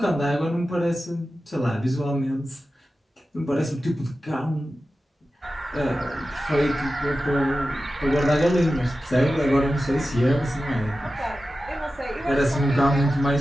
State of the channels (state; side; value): normal; both; correlation 0.93